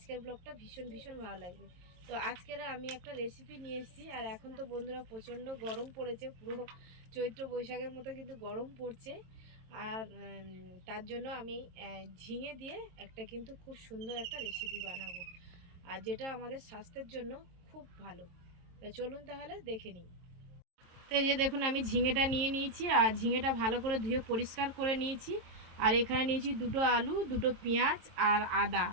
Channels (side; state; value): left; late; 22 ms